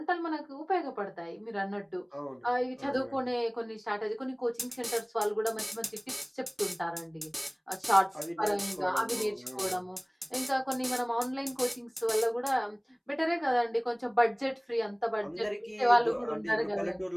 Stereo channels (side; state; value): both; identical; correlation 1.00